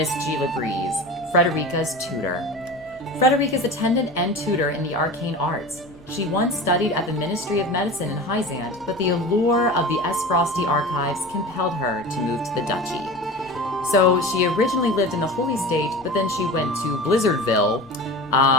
Gila Breeze, Frederica's tutor. Frederica's attendant and tutor in the arcane arts. She once studied at the Ministry of Medicine in Hyzant, but the allure of the Frosty archives compelled her to move to the duchy. So she originally lived in the Holy State, but then she went to Blizzardville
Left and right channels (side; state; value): both; normal; correlation 0.33